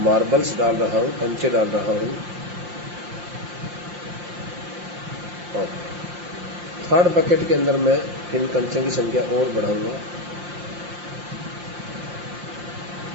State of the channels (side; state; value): left; late; 5.7 ms